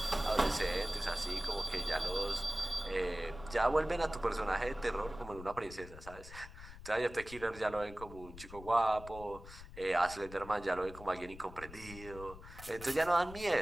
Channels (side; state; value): left; noise; rumble, 14 dB below the sound